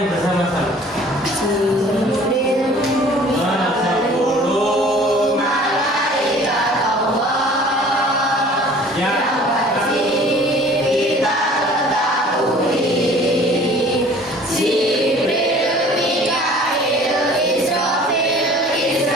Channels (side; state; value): both; normal; correlation 0.49